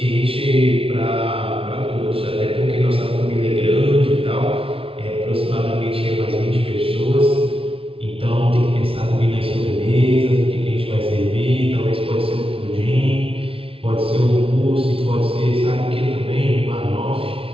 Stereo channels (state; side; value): late; left; 0.26 ms